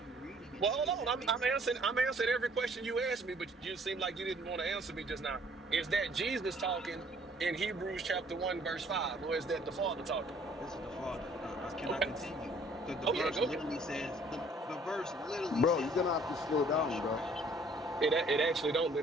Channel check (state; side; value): normal; both; correlation 0.59